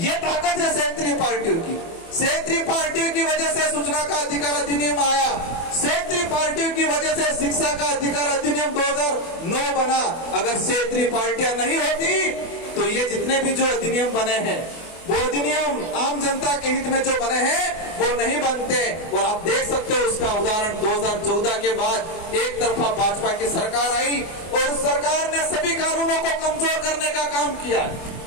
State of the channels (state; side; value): late; right; 24 ms